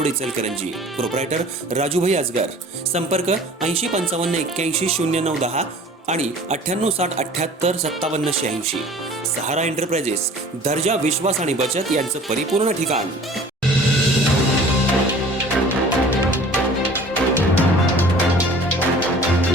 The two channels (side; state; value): both; normal; correlation 0.47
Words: Ichalkaranji. Proprietor Rajubhai Aajgar. संपर्क 8055810910 आणि 9860785786। सहारा एंटरप्राइजेस, दर्जा, विश्वास आणि बचत यांचं परिपूर्ण ठिकाण।